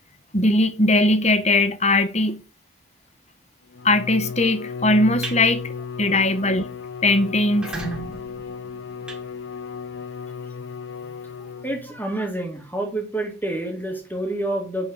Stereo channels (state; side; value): normal; both; correlation 0.47